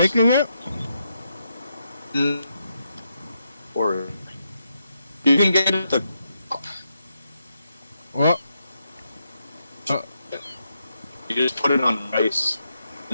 it? Or you can get it at the. What? You just put it on rice,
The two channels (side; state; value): both; inverted; correlation -0.82